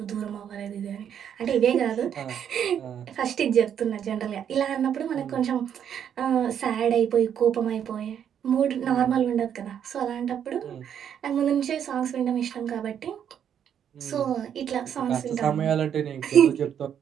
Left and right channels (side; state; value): left; quieter; 8.9 dB